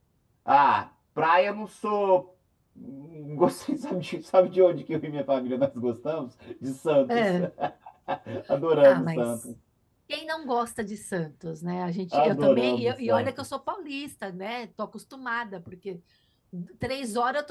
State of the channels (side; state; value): both; identical; correlation 1.00